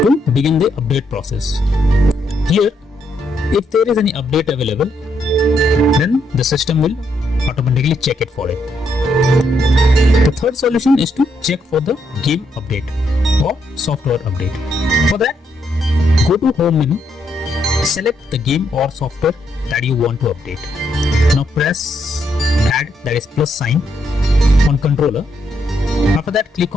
to begin the update process. Here, if there is any update available, then the system will automatically check it for it. The third solution is to check for the game update or software update. For that, go to home menu, select the game or software that you want to update. Now press add, that is plus sign, on controller. After that, click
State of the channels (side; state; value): both; normal; correlation 0.76